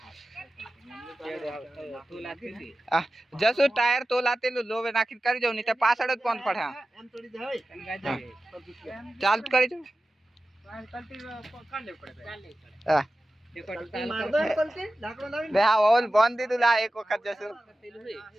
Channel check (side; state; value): both; normal; correlation 0.94